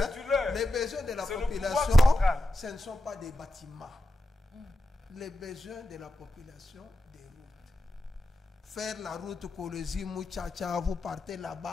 du leur. Les besoins de la C'est le population, pouvoir central. ce ne sont pas des bâtiments. Les besoins de la population, des routes. Faire la route Kolwezi, Muchacha, vous partez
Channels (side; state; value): both; normal; correlation 0.89